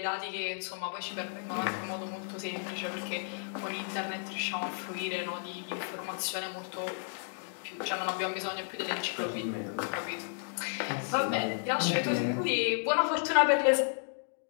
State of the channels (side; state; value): right; silent; digital silence